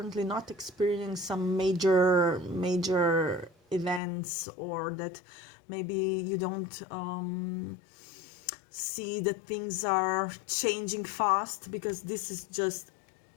not experiencing some major events, or that maybe you don't see that things are changing fast, because this is just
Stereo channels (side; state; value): right; drops out; at 4.0 s